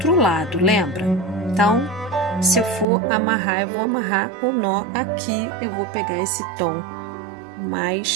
lado, lembra? Então, se eu for amarrar, eu vou amarrar o nó aqui, eu vou pegar esse tom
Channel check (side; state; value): left; drops out; at 2.9 s